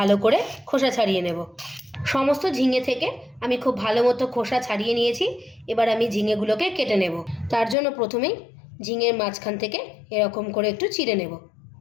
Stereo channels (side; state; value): right; drops out; at 7.8 s